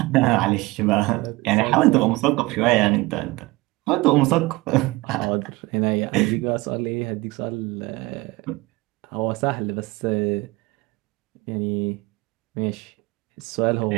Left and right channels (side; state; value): left; quieter; 21.7 dB